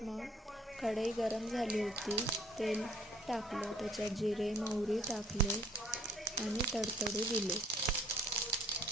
मग कढई गरम झाली होती. तेल टाकलं. त्याच्यात जिरे मोहरी टाकले आणि तडतडू दिले.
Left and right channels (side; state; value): both; normal; correlation 0.60